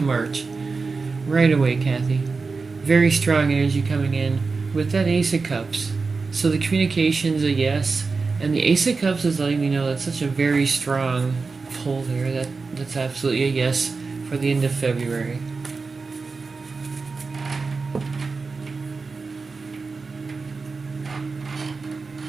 March. Right away, Kathy. Very strong energy coming in with that Ace of Cups. So the communication's a yes, and the Ace of Cups is letting me know that's such a very strong pull there. That's absolutely a yes for the end of February.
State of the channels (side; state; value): left; quieter; 4.3 dB